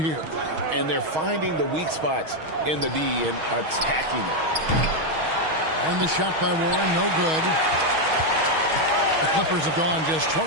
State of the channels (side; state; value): left; late; 6.3 ms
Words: And they're finding the weak spots in the D and attacking it. And the shot by Warren, no good. The Clippers have gone just